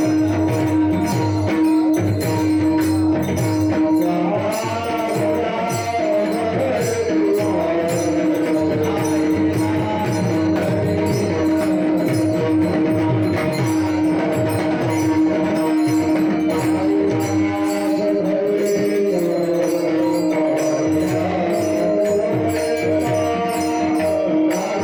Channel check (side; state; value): both; identical; correlation 1.00